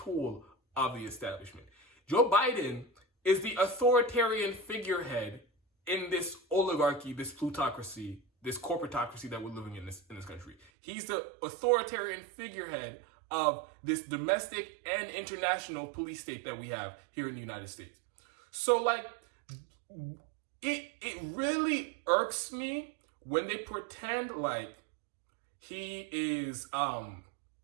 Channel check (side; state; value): left; drops out; at 10.6 s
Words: of the establishment. Joe Biden is the authoritarian figurehead in this oligarchy, this plutocracy, this corporatocracy that we're living in this country. He's the authoritarian figurehead of this domestic and international police state that we have here in the United States. So, like, it really irks me when they pretend like he is,